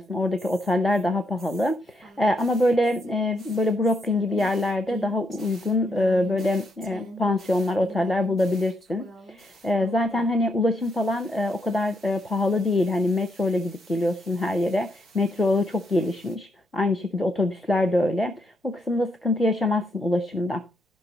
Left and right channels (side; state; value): both; normal; correlation 0.78